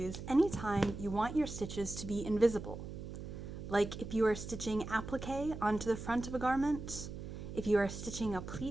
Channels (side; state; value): right; noise; hum, 9 dB below the sound